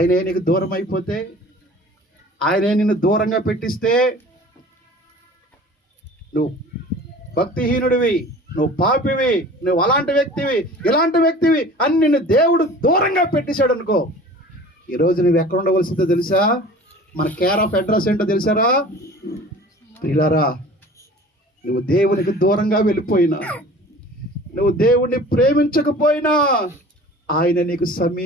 నీకు దూరం అయిపోతే, ఆయనే నిన్ను దూరంగా పెట్టిస్తే నువ్వు భక్తిహీనుడివి, నువ్వు పాపివి, నువ్వు అలాంటి వ్యక్తివి, ఇలాంటి వ్యక్తివి అని నిన్ను దేవుడు దూరంగా పెట్టేశాడు అనుకో, ఈరోజు నువ్వు ఎక్కడ ఉండవలసిందో తెలుసా? మన కేర్ ఆఫ్ అడ్రస్ ఏంటో తెలుసారా ప్రియులారా? నువ్వు దేవునికి దూరంగా వెళ్ళిపోయినా, నువ్వు దేవుణ్ణి ప్రేమించకపోయినా ఆయన నీకు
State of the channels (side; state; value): both; normal; correlation 0.43